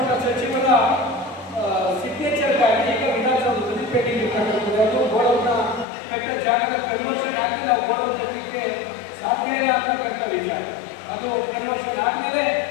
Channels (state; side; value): drops out; right; at 5.9 s